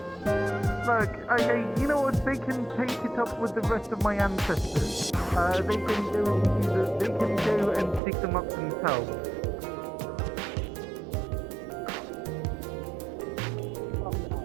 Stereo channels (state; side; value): drops out; left; at 8.0 s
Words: Look, okay, you know what? They can take it up with the rest of my ancestors. They can go and dig them up themselves.